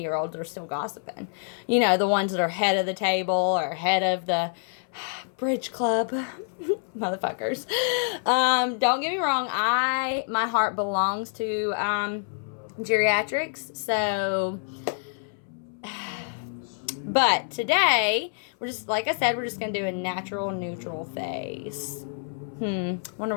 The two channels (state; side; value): silent; right; 60 dB below the other